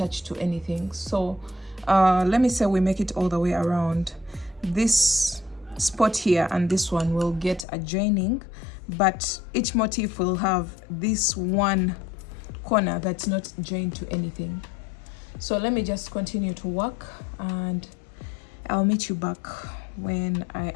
to anything. So let me say we make it all the way around. This spot here and this one will get a joining, but each motif will have this one corner that's not joined to anything. So let me just continue to work and I'll meet you back when I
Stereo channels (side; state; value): right; drops out; at 7.7 s